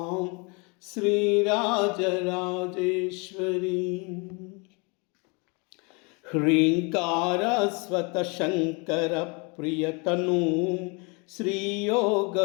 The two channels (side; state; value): right; quieter; 30.8 dB